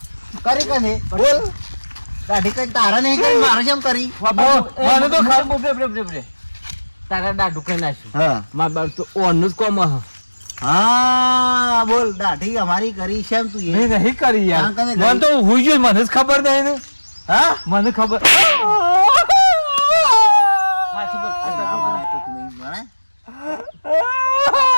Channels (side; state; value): both; inverted; correlation -1.00